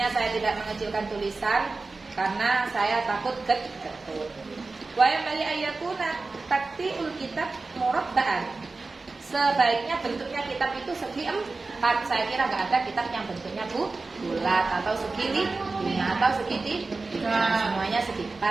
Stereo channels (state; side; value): quieter; left; 3.7 dB